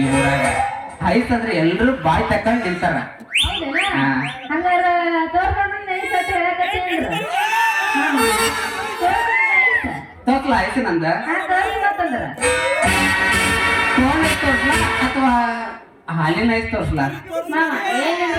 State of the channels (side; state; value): both; identical; correlation 1.00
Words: ಈ ಊರಾಗ ಐಸ್ ಅಂದ್ರೆ ಎಲ್ರು ಬಾಯ್ ತಕೊಂಡ್ ನಿಂತಾರ ಹೌದೇನಾ ಹಾ. ಹಂಗಾರ ತೋರ್ಕೊಂಡು ಐಸ್ ಅಂತ ಹೇಳಕತ್ತೇನ್ರ ತೋರ್ಸ್ಲ ಐಸ್ ನಂದ ತೋರಿ ಮತ್ತಂದ್ರ ಫೋನ್ ಐಸ್ ತೋರ್ಸ್ಲಾ ಅಥವಾ ಹಾಲಿನ ಐಸ್ ತೋರ್ಸ್ಲಾ ಮಾಮ